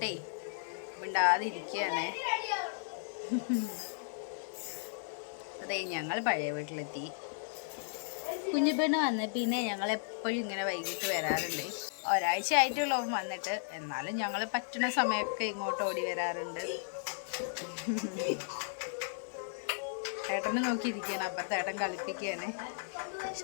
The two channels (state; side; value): silent; right; 54 dB below the other